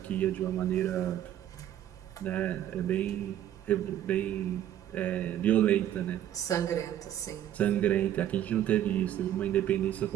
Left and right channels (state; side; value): quieter; left; 11.5 dB